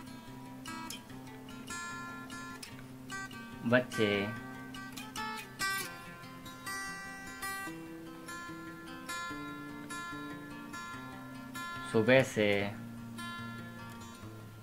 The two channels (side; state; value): both; identical; correlation 1.00